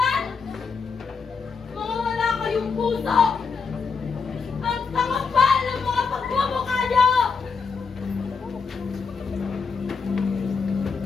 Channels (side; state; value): right; quieter; 5.3 dB